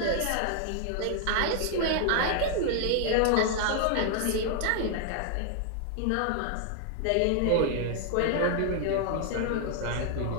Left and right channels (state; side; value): different; both; correlation 0.00